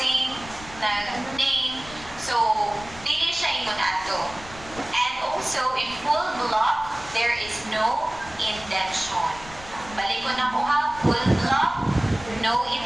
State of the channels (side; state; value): left; noise; rumble, 17 dB below the sound